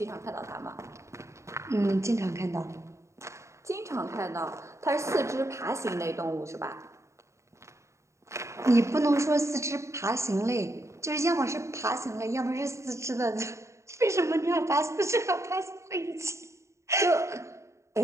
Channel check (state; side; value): late; left; 0.14 ms